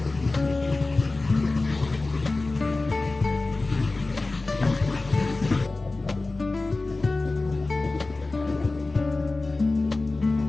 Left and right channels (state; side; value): quieter; right; 3.3 dB